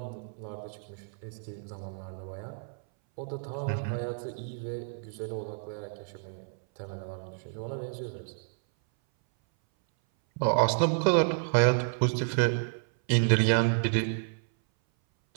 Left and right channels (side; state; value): left; silent; 58 dB below the other